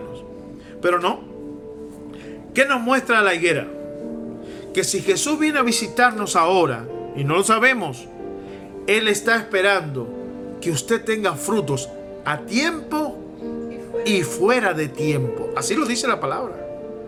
Pero no. ¿Qué nos muestra la higuera? Que si Jesús viene a visitarnos ahora, y no lo sabemos, Él está esperando que usted tenga frutos a tiempo y fuera de tiempo. Así lo dice la palabra.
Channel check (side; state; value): both; identical; correlation 1.00